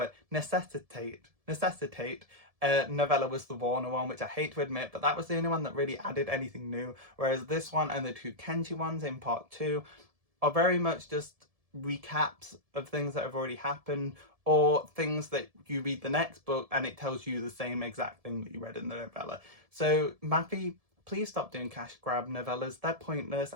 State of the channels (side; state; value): left; late; 1.7 ms